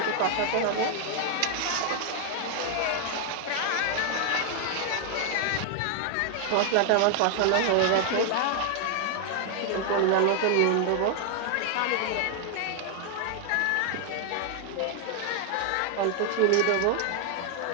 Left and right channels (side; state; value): both; different; correlation 0.00